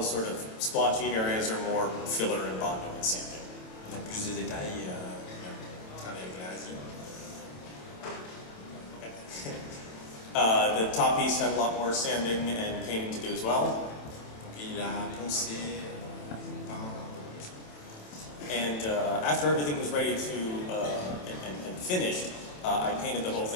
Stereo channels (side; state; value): right; late; 27 ms